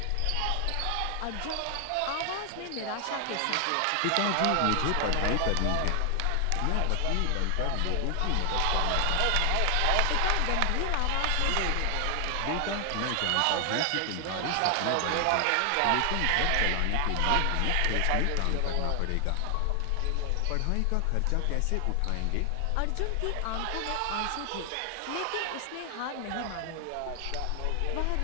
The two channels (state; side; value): different; both; correlation 0.00